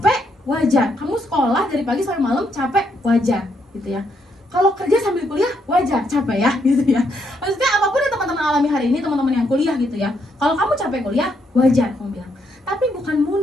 wajar. Kamu sekolah dari pagi sampai malam capek, wajar gitu ya. Kalau kerja sambil kuliah, wajar, capek ya, gitu ya. Maksudnya apapun yang teman-teman alami hari ini, teman-teman yang kuliah gitu ya. Kalau kamu capek kuliah, wajar, kamu bilang. Tapi bukan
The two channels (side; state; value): both; normal; correlation 0.75